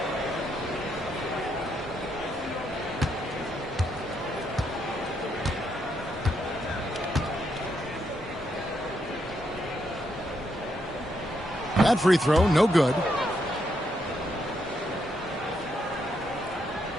That free throw, no good.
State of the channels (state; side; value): normal; both; correlation 0.78